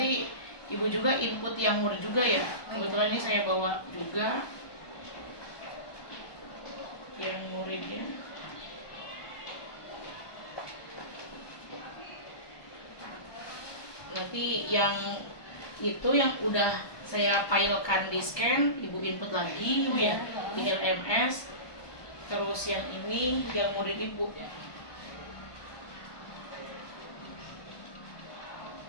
Ibu juga input yang murid juga ya. Kebetulan ini saya bawa juga yang muridnya. Nanti yang itu yang udah saya filekan di scan, Ibu input lagi Ibu ya di LMS. Terus yang ini yang murid Ibu.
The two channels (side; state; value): right; late; 1.2 ms